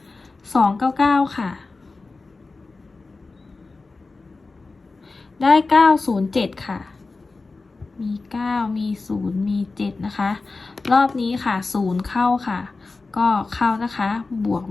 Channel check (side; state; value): right; quieter; 3.8 dB